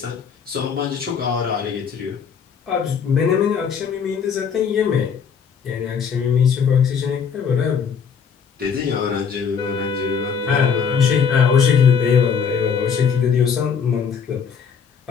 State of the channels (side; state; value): right; quieter; 6.6 dB